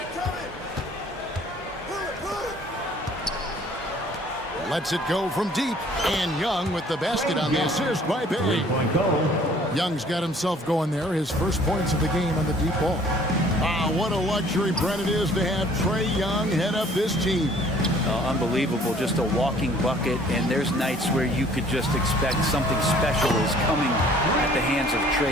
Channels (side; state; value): both; normal; correlation 0.55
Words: Lets it go from deep. And Young with the basket on the assist by Bay. Young's got himself going there. His first points of the game on the deep ball. What a luxury, Brent, it is to have Trae Young head up this team. Unbelievable, just a walking bucket, and there's nights where you could just expect something special is coming at the hands of